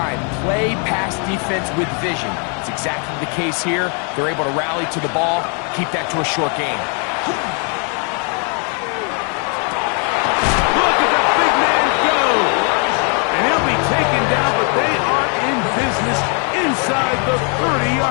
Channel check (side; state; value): right; quieter; 39.1 dB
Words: play pass defense with vision. It's exactly the case here. They're able to rally to the ball, keep that to a short game. Look at the big man go. And he'll be taken down, but they are in business inside the